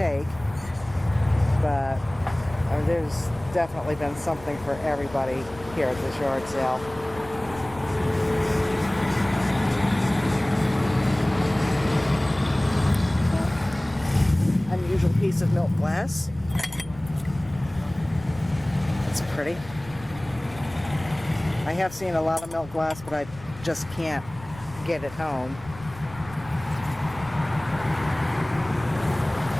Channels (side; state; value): left; noise; rumble, 18 dB below the sound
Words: But there's definitely been something for everybody here at this yard sale. Unusual piece of milk glass. It's pretty. I have seen a lot of milk glass, but I just can't get it home.